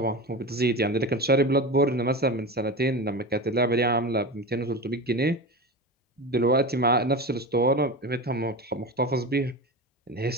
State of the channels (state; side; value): normal; both; correlation 0.26